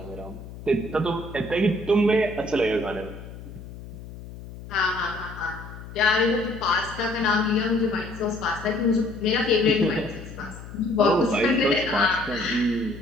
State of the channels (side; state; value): left; noise; hum, 14 dB below the sound